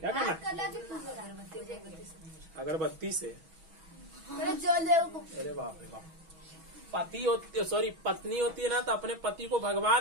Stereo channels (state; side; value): late; left; 6.2 ms